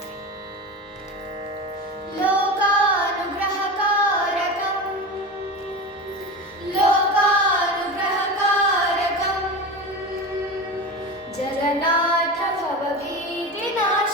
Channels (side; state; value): both; normal; correlation 0.26